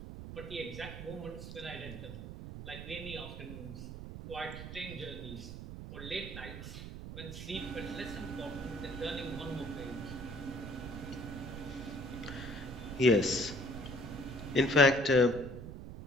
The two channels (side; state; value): right; noise; rumble, 9 dB below the sound